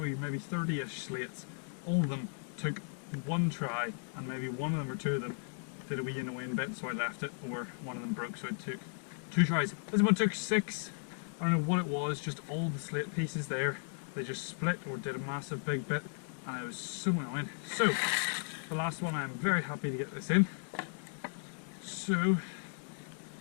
maybe 30-ish slates. All of them took one try, and maybe one of them or two of them did a wee annoying bit, so I left it, or one of them broke, so it took 2 tries. This one took 6. I don't know what it was, just all the slate pieces there, they just split or did a massive big bit, and it was so annoying. So, the last one, I'm very happy to get this in. So,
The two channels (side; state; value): right; silent; 54 dB below the other